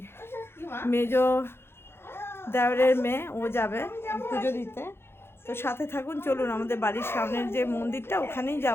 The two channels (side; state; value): right; late; 0.11 ms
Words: মেজো দেওরের মেয়ে, ও যাবে পুজো দিতে। তো সাথে থাকুন, চলুন আমাদের বাড়ির সামনের যে মন্দিরটা ওখানেই